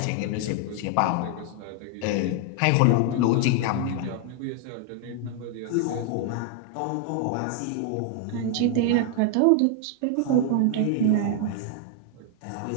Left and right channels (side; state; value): both; different; correlation 0.00